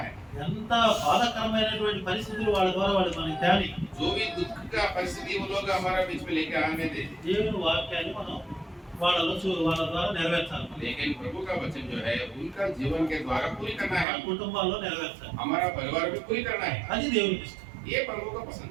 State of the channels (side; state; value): left; drops out; at 14.1 s